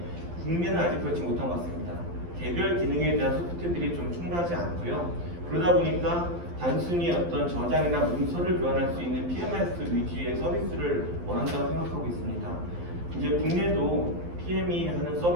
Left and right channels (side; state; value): left; late; 12 ms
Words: 국내는 아직 그렇지 못한 것 같습니다. 개별 기능에 대한 소프트들이 좀 충분하지 않고요. 그러다 보니까 단순히 어떤 저장이나 문서를 교환할 수 있는 PMIS 위주의 서비스를 원한다고 생각하고 있습니다. 이제 국내도 PM이 하는